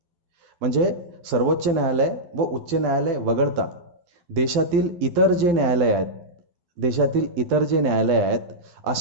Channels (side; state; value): left; late; 11 ms